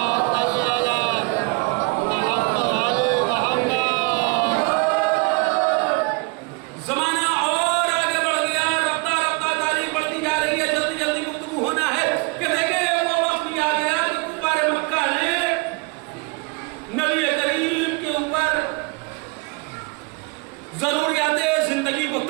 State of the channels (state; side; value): quieter; left; 28.1 dB